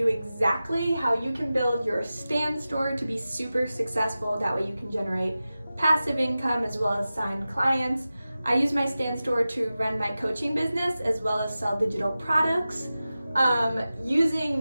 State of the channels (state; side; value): inverted; both; correlation -0.95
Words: exactly how you can build your stand store to be super successful. That way you can generate passive income as well as sign clients. I use my stand store to run my coaching business as well as sell digital products.